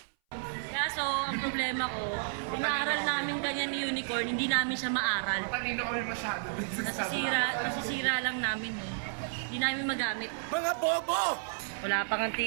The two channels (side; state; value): left; silent; 57 dB below the other